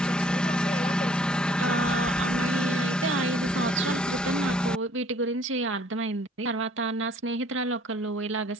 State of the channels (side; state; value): both; normal; correlation 0.58